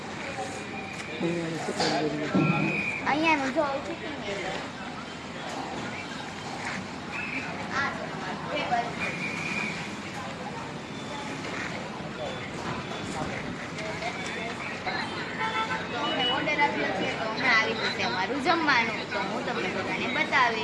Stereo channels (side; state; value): both; identical; correlation 1.00